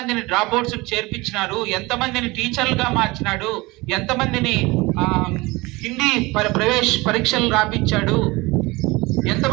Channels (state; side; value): quieter; left; 22.8 dB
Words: డ్రాప్ అవుట్స్ చేర్పించినారు, ఎంతమందిని టీచర్లుగా మార్చినాడు, ఎంతమందిని హిందీ ప్రవేశ పరీక్షలు రాపించాడు,